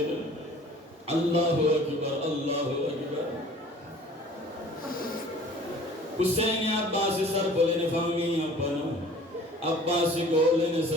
اللہ اکبر اللہ اکبر حسین عباسی سر بولین فامی اپنا عباسی گولین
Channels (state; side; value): normal; both; correlation 0.48